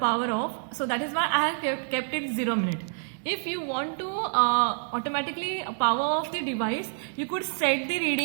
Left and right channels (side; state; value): left; silent; digital silence